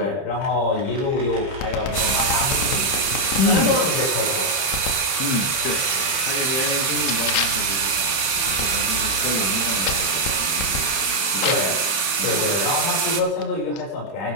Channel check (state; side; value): late; right; 30 ms